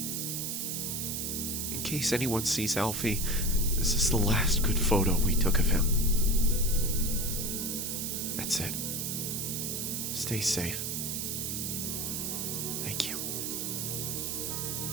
In case anyone sees Alfie, this is the last good photo we took of him. That's it. Stay safe. Thank you.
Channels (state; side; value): noise; right; hiss, 2 dB below the sound